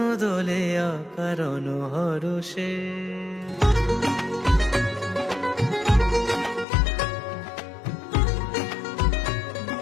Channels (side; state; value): right; drops out; at 6.7 s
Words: দোলে অকারণ হরষে।